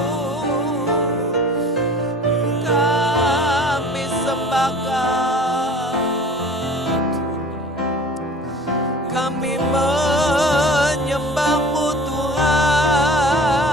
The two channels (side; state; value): both; normal; correlation 0.43